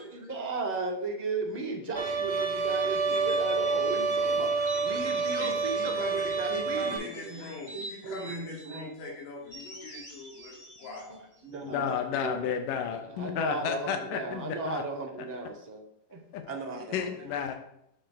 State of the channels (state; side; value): late; right; 11 ms